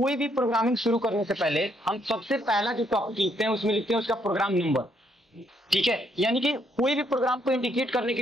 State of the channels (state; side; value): normal; both; correlation 0.72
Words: भी प्रोग्रामिंग शुरू करने से पहले हम सबसे पहला जो टॉपिक लिखते हैं उसमें लिखते हैं उसका प्रोग्राम नंबर, ठीक है। यानी कि कोई भी प्रोग्राम को इंडिकेट करने के